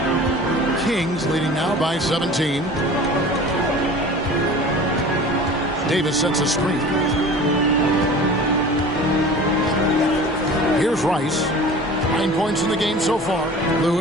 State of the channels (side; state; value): both; normal; correlation 0.40